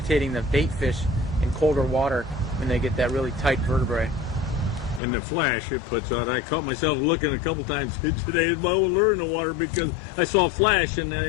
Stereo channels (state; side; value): drops out; right; at 5.0 s